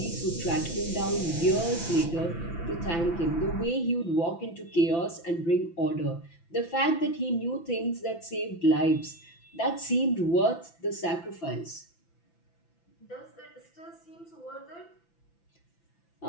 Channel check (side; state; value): right; late; 5.9 ms